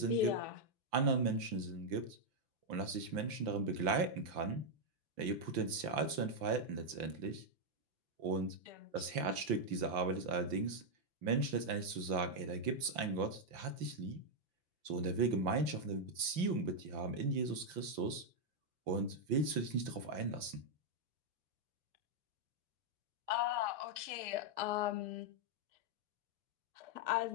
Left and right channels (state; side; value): late; left; 5.8 ms